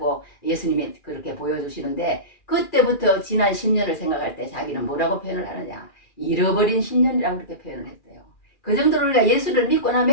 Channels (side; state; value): right; late; 2.4 ms